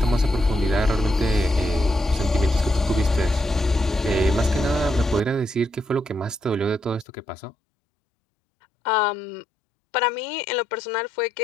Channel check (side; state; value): right; drops out; at 7.1 s